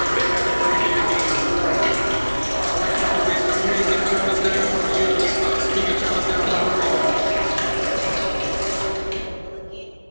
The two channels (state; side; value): inverted; both; correlation -1.00